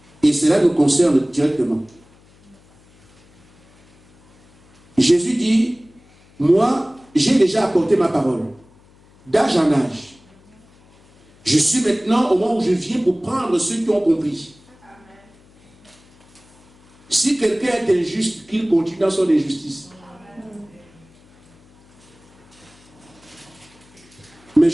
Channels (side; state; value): left; noise; hum, 29 dB below the sound